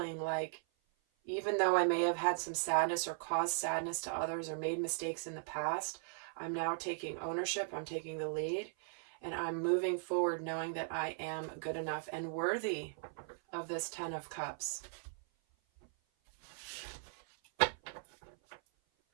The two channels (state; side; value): silent; left; 52 dB below the other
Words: like, even though I may have had some sadness or caused sadness to others or made mistakes in the past, I'm now taking ownership, I'm taking the lead, and I'm moving forward knowing that I am good enough and worthy of this 10 of Cups.